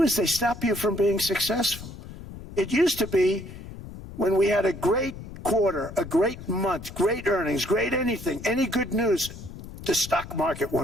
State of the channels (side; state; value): left; noise; rumble, 13 dB below the sound